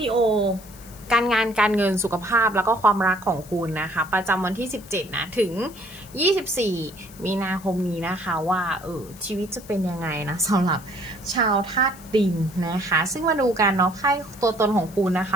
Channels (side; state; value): left; noise; hiss, 21 dB below the sound